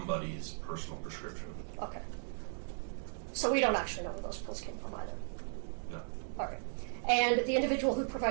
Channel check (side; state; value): left; silent; digital silence